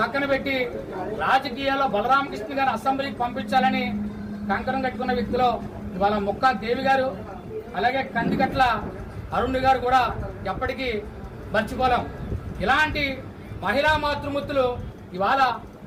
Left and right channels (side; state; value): both; identical; correlation 1.00